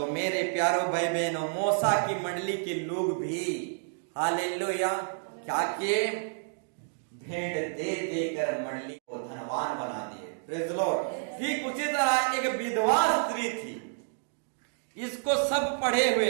मेरे प्यारों भाई बहनों, मूसा की मंडली के लोग भी हालेलुया क्या किए? भेंट दे देकर मंडली को धनवान बना दिए। Praise the Lord. ठीक उसी तरह एक विधवा स्त्री थी, इसको सब पढ़े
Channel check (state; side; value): silent; left; digital silence